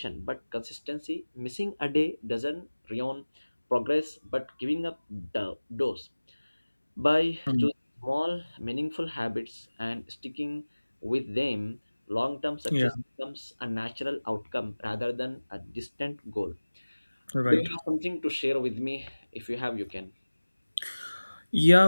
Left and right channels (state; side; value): inverted; both; correlation -1.00